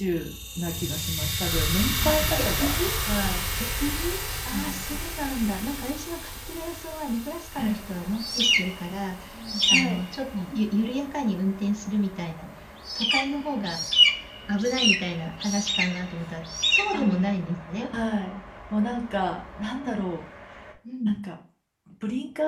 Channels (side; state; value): both; identical; correlation 1.00